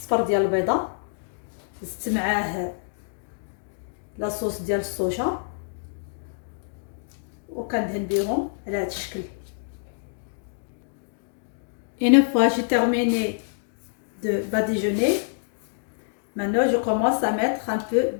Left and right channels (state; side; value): silent; right; digital silence